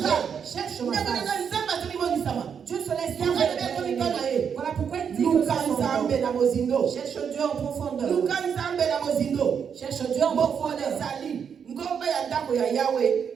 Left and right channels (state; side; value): quieter; left; 7.2 dB